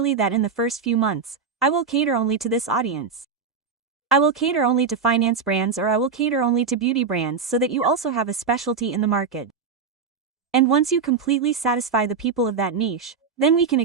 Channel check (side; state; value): left; quieter; 5.6 dB